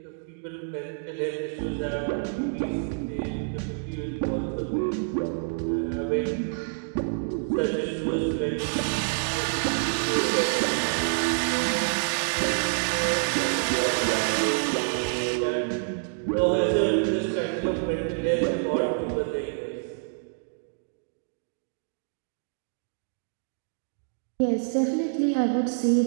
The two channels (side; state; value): left; silent; digital silence